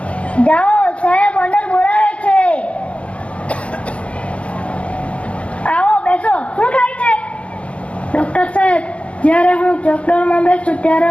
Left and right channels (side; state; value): right; late; 0.062 ms